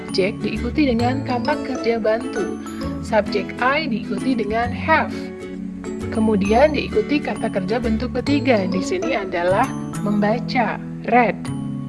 diikuti dengan kata kerja bantu. Subjek I diikuti dengan have. Kemudian diikuti kata kerja bentuk ketiga. Di sini adalah membaca, read.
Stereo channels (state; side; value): identical; both; correlation 1.00